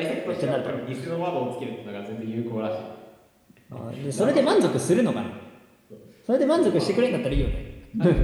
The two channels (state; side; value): identical; both; correlation 1.00